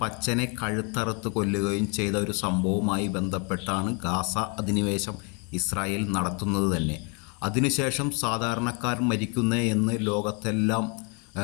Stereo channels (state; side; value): quieter; right; 34.7 dB